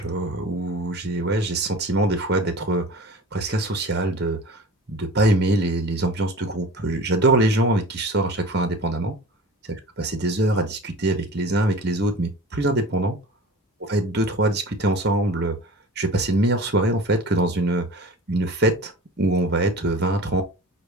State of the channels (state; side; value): normal; both; correlation 0.39